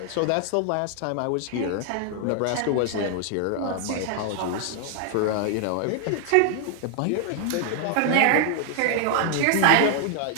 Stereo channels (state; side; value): different; both; correlation 0.00